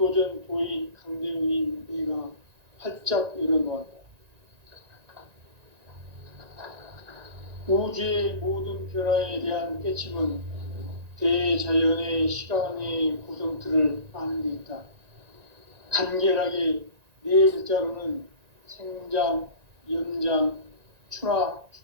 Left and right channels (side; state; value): left; late; 1.9 ms